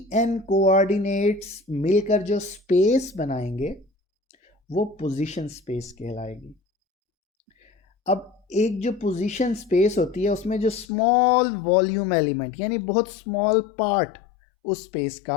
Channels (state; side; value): drops out; right; at 10.9 s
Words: कोऑर्डिनेट्स मिलकर जो स्पेस बनाएंगे वो पोजीशन स्पेस कहलाएगी। अब एक जो पोजीशन स्पेस होती है उसमें जो स्मॉल वॉल्यूम एलिमेंट यानी बहुत स्मॉल पार्ट उस स्पेस